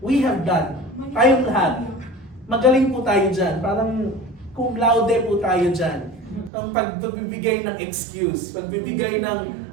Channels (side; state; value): left; drops out; at 6.5 s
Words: have done. Tayong lahat. Magaling po tayo dyan. Parang cum laude po tayo dyan. Ang pagbibigay ng excuse. Pagbibigay ng,